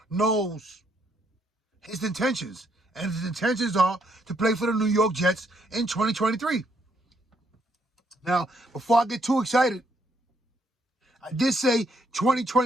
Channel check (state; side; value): normal; both; correlation 0.72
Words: knows his intentions. And his intentions are to play for the New York Jets in 2023. Now, before I get too excited, I did say